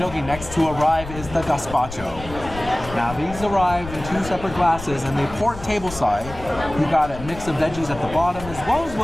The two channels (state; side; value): noise; left; rumble, 12 dB below the sound